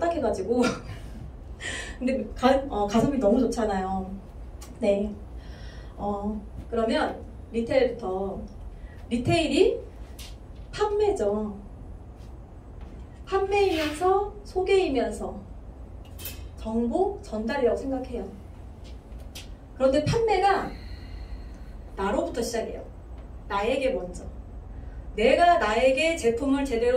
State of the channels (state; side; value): identical; both; correlation 1.00